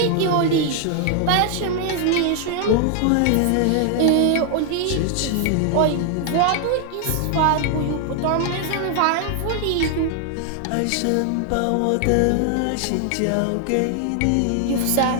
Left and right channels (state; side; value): different; both; correlation 0.00